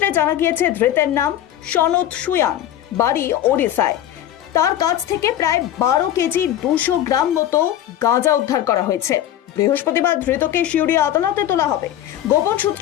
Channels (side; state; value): right; quieter; 11.7 dB